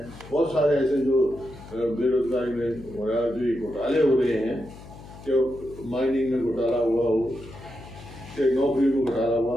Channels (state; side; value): noise; left; hum, 17 dB below the sound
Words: बहुत सारे ऐसे जो बेरोजगारी में हो रहा है, जो ये घोटाले हो रहे हैं, कि माइनिंग में घोटाला हुआ हो, कि नौकरी में घोटाला